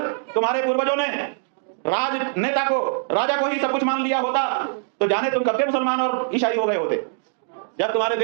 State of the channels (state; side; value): silent; left; digital silence